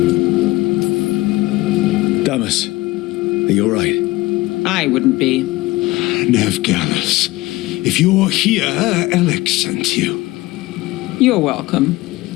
Damas, are you alright? I wouldn't be. Nev Gallus, if you're here, Alec sent you. You're welcome.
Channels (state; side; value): quieter; right; 19.6 dB